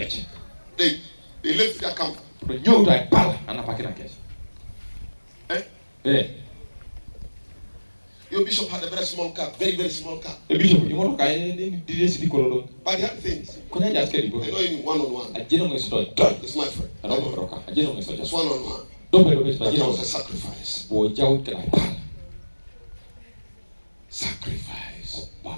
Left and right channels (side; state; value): both; inverted; correlation -1.00